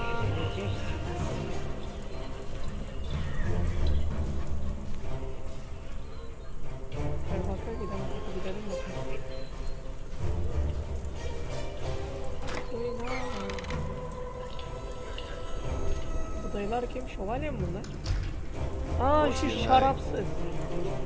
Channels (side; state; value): both; identical; correlation 1.00